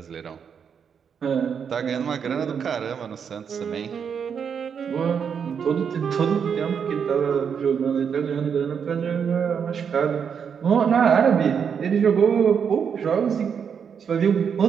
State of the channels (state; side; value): quieter; left; 7.1 dB